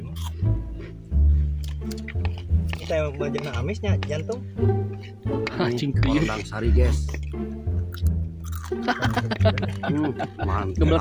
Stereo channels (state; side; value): identical; both; correlation 1.00